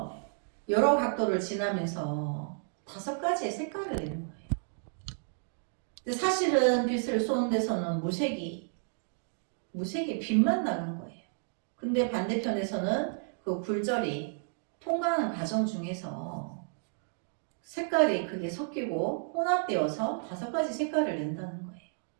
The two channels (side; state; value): left; silent; digital silence